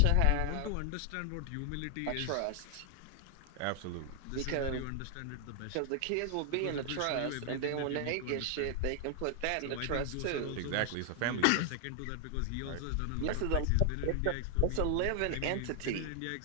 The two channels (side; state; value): both; different; correlation 0.00